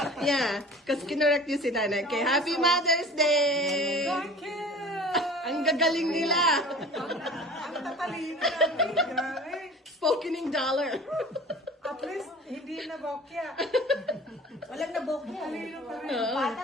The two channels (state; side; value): normal; both; correlation 0.42